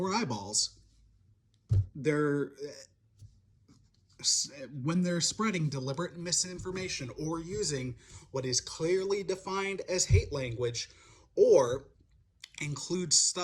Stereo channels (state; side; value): identical; both; correlation 1.00